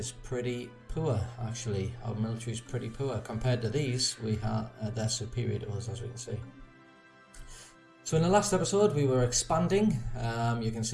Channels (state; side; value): identical; both; correlation 1.00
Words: pretty poor, actually. Our military is pretty poor. Compared to these, they're superior to us, as we can see. So in the last episode, we were expanding. You can